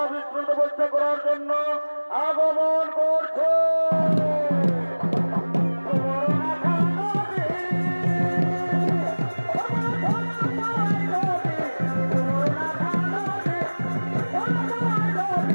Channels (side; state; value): both; inverted; correlation -1.00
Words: তপস্যা করার জন্য আগমন করছে।